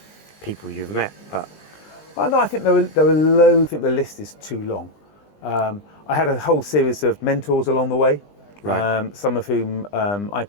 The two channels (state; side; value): late; right; 20 ms